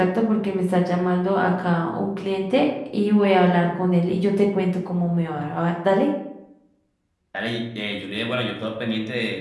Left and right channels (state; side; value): identical; both; correlation 1.00